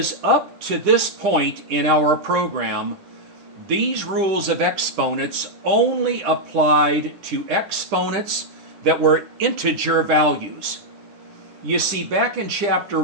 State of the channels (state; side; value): late; left; 10 ms